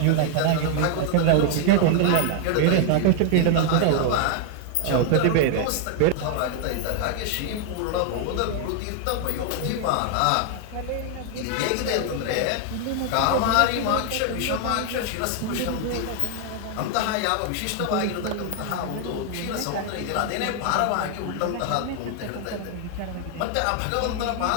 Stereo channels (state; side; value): different; both; correlation 0.00